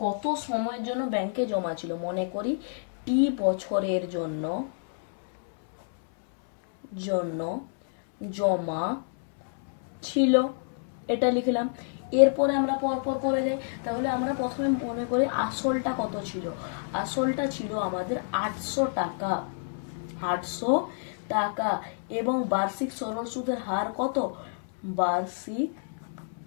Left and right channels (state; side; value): silent; right; 59 dB below the other